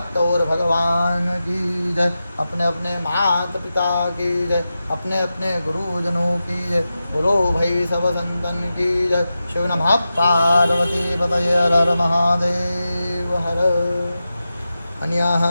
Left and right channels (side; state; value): both; inverted; correlation -0.92